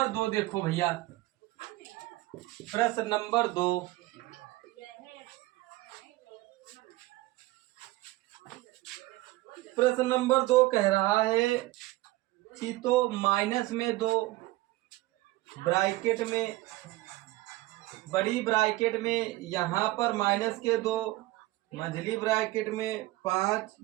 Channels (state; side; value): quieter; left; 18.8 dB